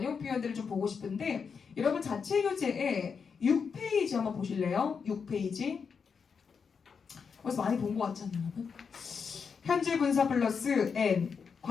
표현들을 좀 보고 싶은데 여러분 자체 교재에 6페이지 한번 보실래요? 6페이지. 벌써 많이 본 것 같지 않나요, 여러분? 현재 분사 플러스 N,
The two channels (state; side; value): quieter; right; 6.0 dB